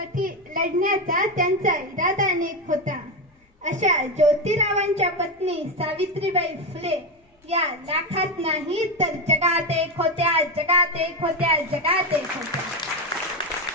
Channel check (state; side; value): normal; both; correlation 0.12